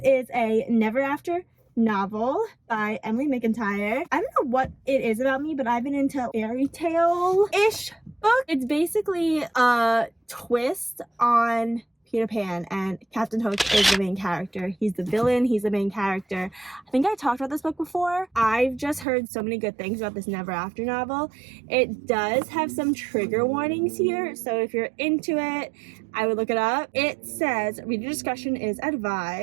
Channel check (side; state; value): left; drops out; at 19.1 s